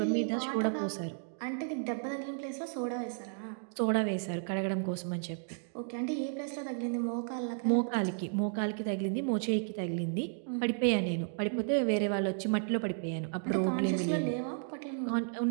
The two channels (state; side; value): silent; left; digital silence